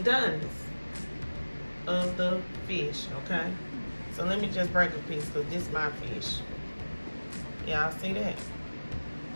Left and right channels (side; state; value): both; inverted; correlation -1.00